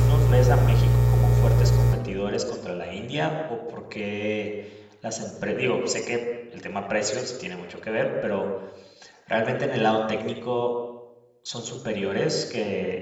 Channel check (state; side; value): identical; both; correlation 1.00